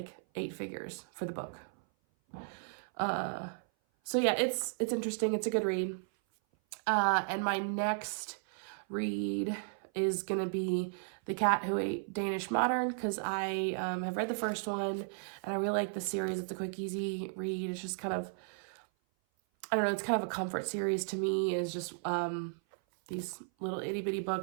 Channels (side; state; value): left; silent; 55 dB below the other